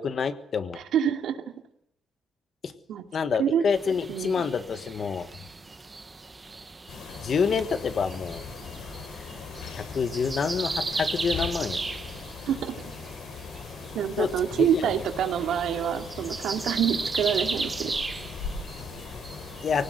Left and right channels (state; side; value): normal; both; correlation 0.70